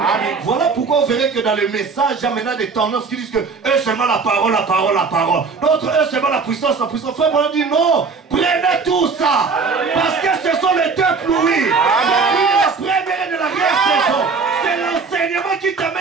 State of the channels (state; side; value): quieter; left; 4.8 dB